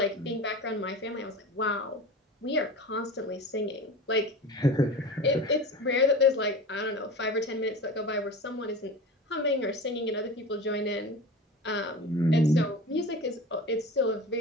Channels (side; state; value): both; normal; correlation 0.33